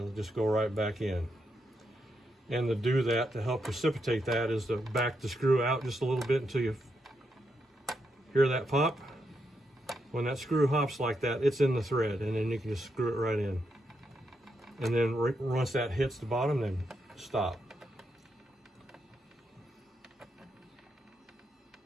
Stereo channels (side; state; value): both; normal; correlation 0.82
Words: just go right back in. And to do that, to help precipitate that, is to back the screw out just a little bit until you hear that pop. When that screw hops like that, it's in the thread, and then you can just screw it right in. And then once that hits the bottom, then stop.